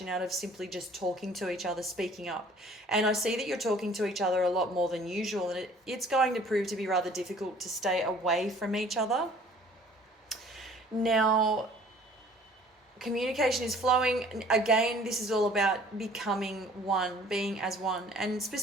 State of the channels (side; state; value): both; normal; correlation 0.53